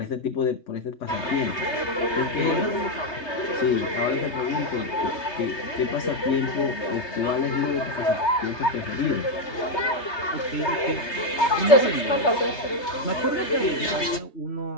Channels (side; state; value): right; late; 3.3 ms